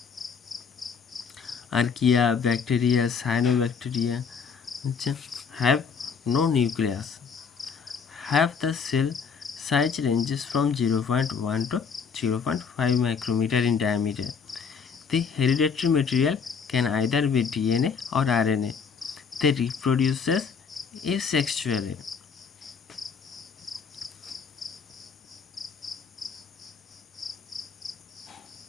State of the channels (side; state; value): right; quieter; 6.1 dB